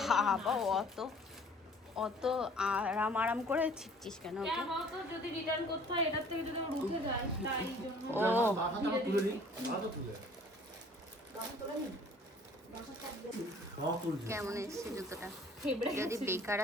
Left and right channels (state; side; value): normal; both; correlation 0.53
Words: বাবা অত অত আরাম করে ছিটছিস কেন? যদি রিটার্ন করতে হয় এটার থেকে যদি উঠে যায় তাই জন্য। ও কেমন এসছে জুতোটা? যদি বেকার